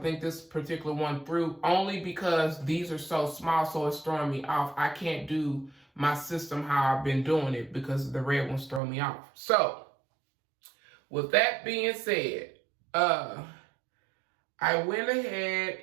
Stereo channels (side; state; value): left; drops out; at 8.8 s